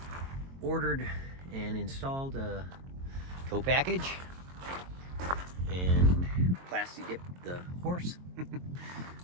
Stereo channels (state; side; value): late; left; 22 ms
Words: ordered and installed a tow package and plastic dipped the horse.